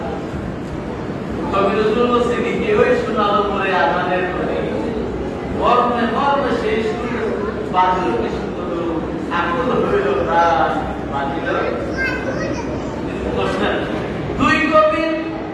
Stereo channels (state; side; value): identical; both; correlation 1.00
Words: কবি নজরুল বলছেন কেউই শোনালো পরে আযানের ধ্বনি, মর্মে মর্মে সেই সুর বাজিল কি সুন্দর, আকুল হইল প্রাণ বাজিল। দুই কবির